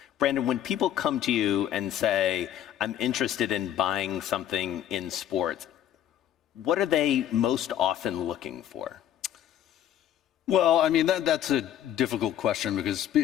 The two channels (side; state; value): right; quieter; 11.0 dB